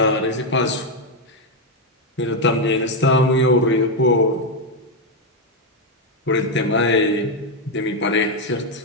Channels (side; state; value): both; normal; correlation 0.03